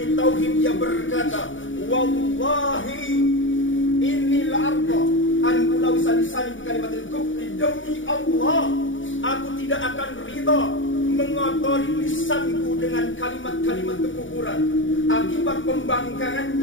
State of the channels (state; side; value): late; right; 0.56 ms